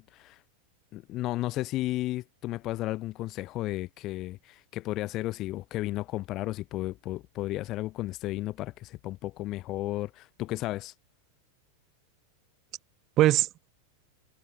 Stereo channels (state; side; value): normal; both; correlation 0.32